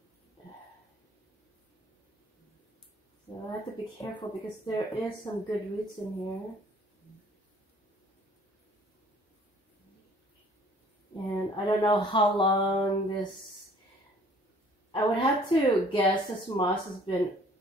So I have to be careful because there is some good roots in here. And I don't know how long this, I would have to guess this moss has been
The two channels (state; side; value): normal; both; correlation 0.55